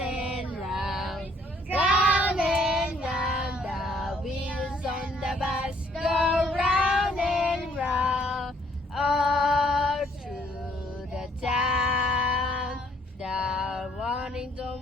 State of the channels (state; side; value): normal; both; correlation 0.65